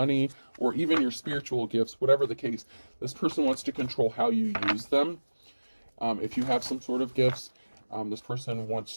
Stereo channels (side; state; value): both; inverted; correlation -1.00